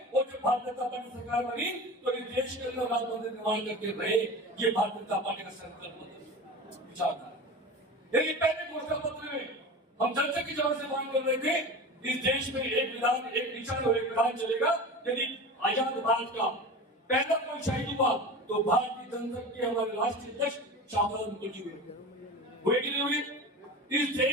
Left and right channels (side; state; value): both; normal; correlation 0.31